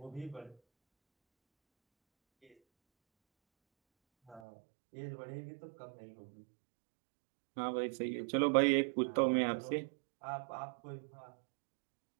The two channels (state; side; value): drops out; left; at 4.4 s